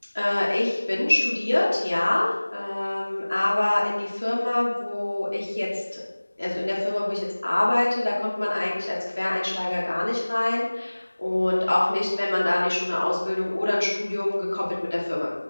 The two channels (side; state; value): both; inverted; correlation -1.00